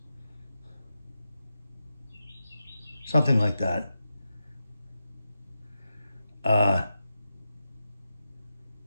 Something like that.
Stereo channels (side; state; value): both; inverted; correlation -0.89